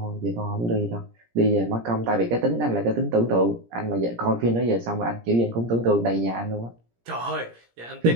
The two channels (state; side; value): late; left; 17 ms